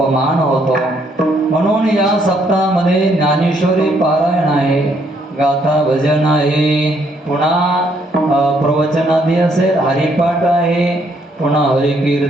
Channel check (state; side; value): normal; both; correlation 0.70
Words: होतो. म्हणून या सप्ताहामध्ये ज्ञानेश्वरी पारायण आहे, गाथा भजन आहे, पुन्हा प्रवचनादी असेल, हरिपाठ आहे, पुन्हा